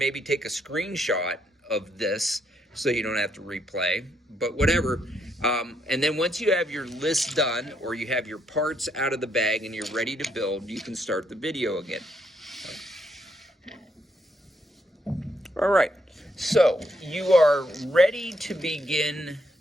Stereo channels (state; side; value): normal; both; correlation 0.75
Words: take a screenshot of this so you don't have to replay, but whatever. And then once you have your list done, or you have your parts out of the bag and you're ready to build, you can start the video again. All right. So you are ready to begin